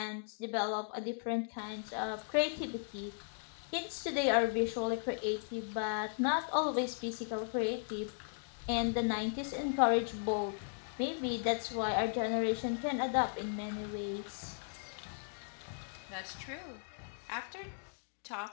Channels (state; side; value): silent; right; digital silence